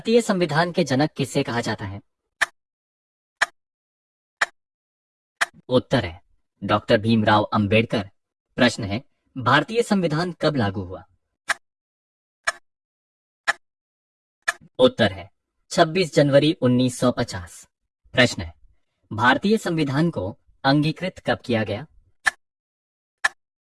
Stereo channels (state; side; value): identical; both; correlation 1.00